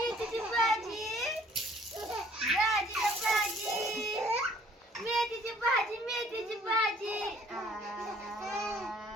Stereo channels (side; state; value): both; normal; correlation 0.59